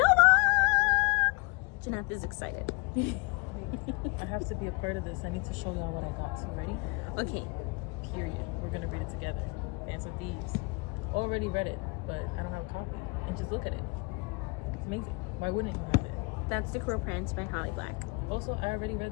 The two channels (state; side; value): quieter; right; 27.9 dB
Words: Jeanette is excited. I have to be a part of this. I need to show y'all what I got. So ready? Okay. Period. We're gonna read it together. Dance with Thieves. Already read it, but I don't have a copy. And just look at it. It's amazing. Why wouldn't you have it? That's The Cruel Prince by Holly Black. Also, I already